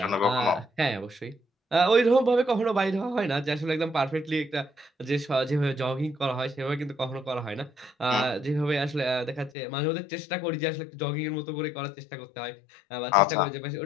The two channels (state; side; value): drops out; right; at 9.5 s